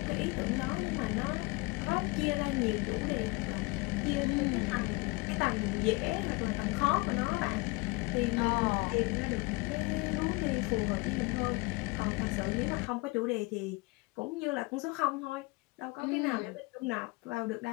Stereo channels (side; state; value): right; quieter; 25.8 dB